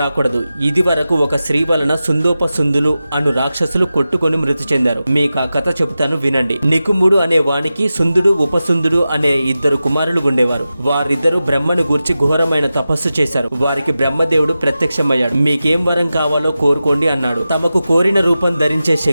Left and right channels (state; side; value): inverted; both; correlation -0.93